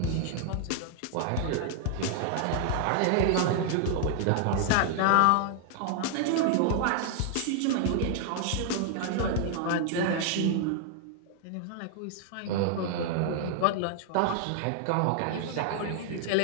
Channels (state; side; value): different; both; correlation 0.00